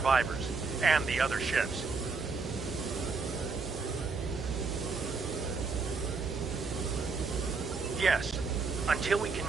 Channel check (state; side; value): quieter; left; 4.5 dB